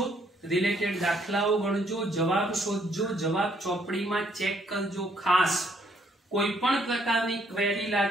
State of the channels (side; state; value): both; normal; correlation 0.68